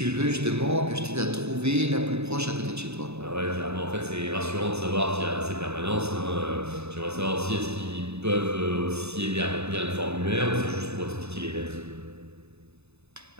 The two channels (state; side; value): late; left; 0.80 ms